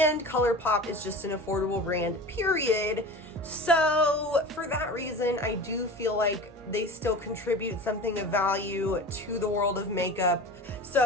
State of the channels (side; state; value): both; normal; correlation 0.35